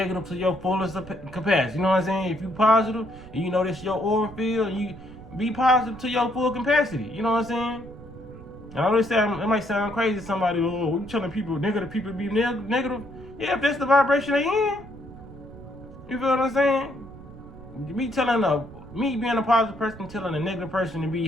to your fullest capacity. You know what I'm saying? If you positive, and you know that's your aura field, you be positive to your full capacity. You know what I'm saying? And I always say, it might sound crazy to somebody, oh, you telling people, negative people be negative? Yeah, if that's the vibration they in. You feel what I'm saying? Me being a positive person telling a negative person to be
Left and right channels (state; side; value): noise; right; rumble, 17 dB below the sound